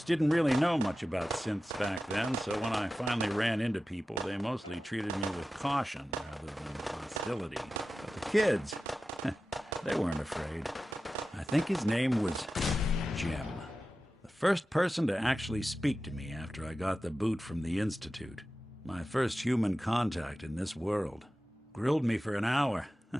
didn't really know much about synths back then, so when I finally ran into people, they mostly treated me with caution rather than hostility. But the kids, they weren't afraid. I think his name was Jim. The first person to actually speak to me after I got the boot from the Institute. My first human contact in this world. Grilled me for an hour.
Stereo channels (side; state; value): both; normal; correlation 0.94